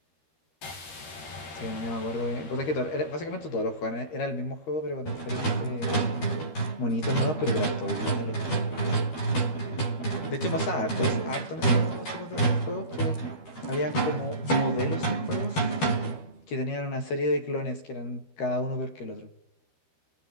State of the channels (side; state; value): right; late; 12 ms